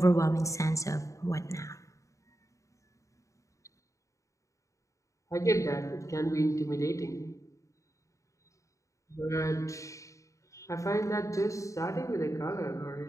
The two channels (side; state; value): right; late; 0.15 ms